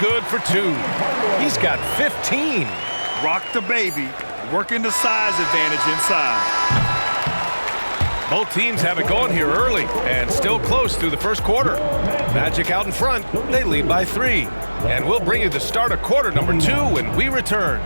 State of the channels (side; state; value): both; inverted; correlation -1.00